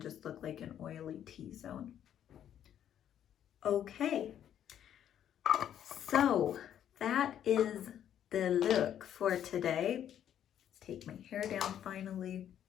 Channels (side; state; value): right; quieter; 10.2 dB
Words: just look like an oily T-zone. Okay, so that is the look for today. Let's take my hair down finally.